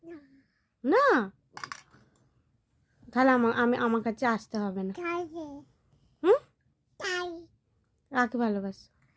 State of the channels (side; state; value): both; identical; correlation 1.00